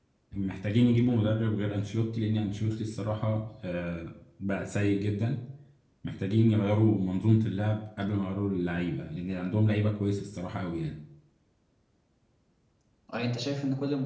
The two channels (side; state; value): both; identical; correlation 1.00